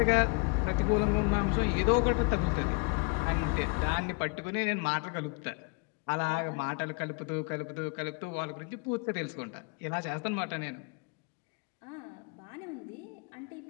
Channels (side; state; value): right; quieter; 33.2 dB